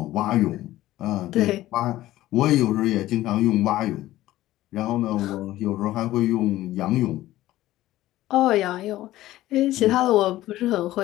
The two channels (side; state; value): right; quieter; 15.5 dB